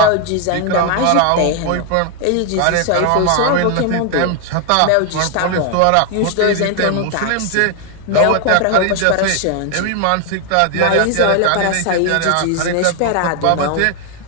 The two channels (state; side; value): different; both; correlation 0.00